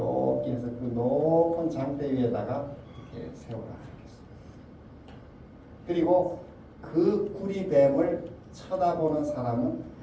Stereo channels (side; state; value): both; identical; correlation 1.00